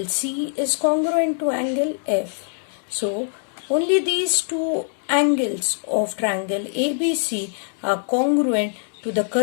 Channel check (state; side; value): silent; right; 62 dB below the other